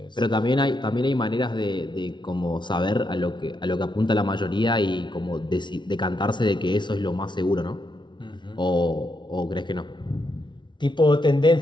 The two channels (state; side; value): late; right; 0.23 ms